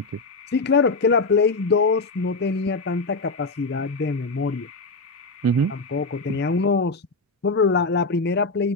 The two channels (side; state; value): right; quieter; 3.4 dB